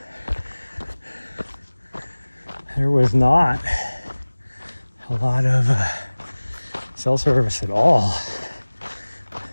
there was not a lot of cell service at all.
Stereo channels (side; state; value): both; inverted; correlation -1.00